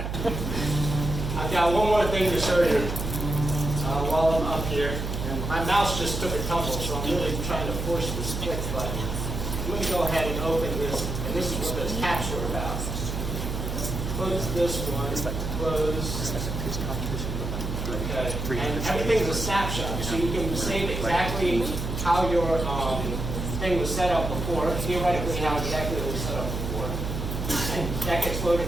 I've got one more thing to show you while I'm up here. And my mouse just took a tumble, so I'm really trying to force this click button. I'm going to go ahead and open this, and this is what this caps are about. Close this one, close. Okay. And everything's a snapshot, so you can save exactly how your thing was set up before, theoretically how exactly it was set up before. And that gets loaded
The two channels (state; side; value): noise; right; hum, 4 dB below the sound